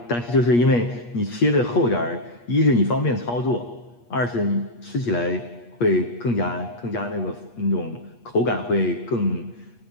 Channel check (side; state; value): right; late; 8.4 ms